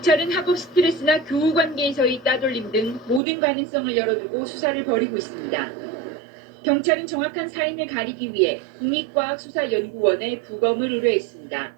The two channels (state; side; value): drops out; left; at 3.2 s